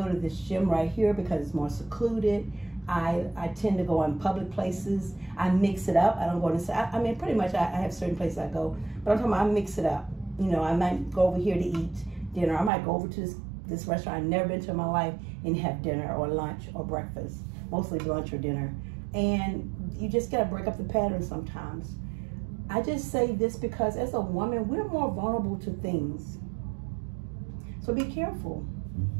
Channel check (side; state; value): left; drops out; at 12.7 s